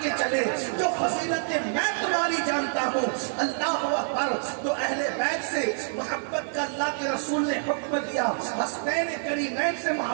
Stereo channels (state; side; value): silent; left; digital silence